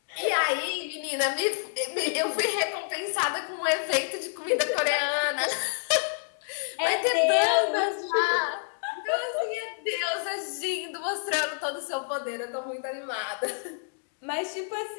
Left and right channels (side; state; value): right; silent; digital silence